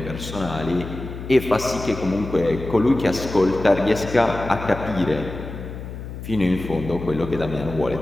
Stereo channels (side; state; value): left; noise; hum, 10 dB below the sound